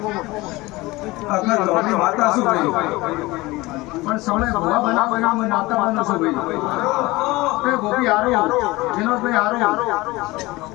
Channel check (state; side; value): quieter; right; 20.9 dB